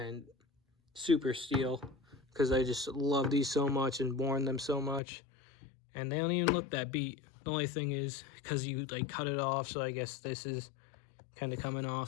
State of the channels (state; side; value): drops out; right; at 5.0 s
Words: super steal, because I just love these so much and worn them so much, and they don't even look that beat. The only thing is because you like cut it off, so I guess this is kind of coming